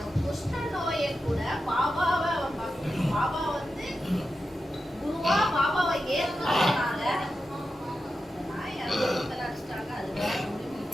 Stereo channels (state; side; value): normal; both; correlation 0.90